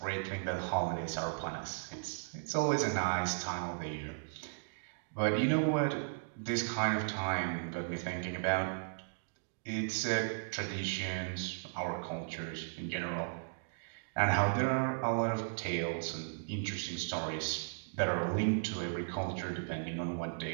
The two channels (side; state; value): left; silent; digital silence